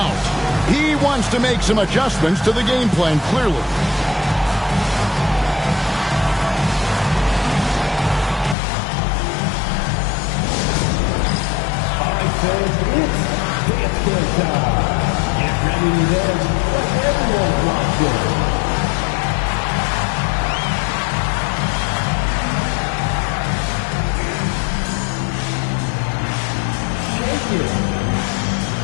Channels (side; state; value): right; drops out; at 8.6 s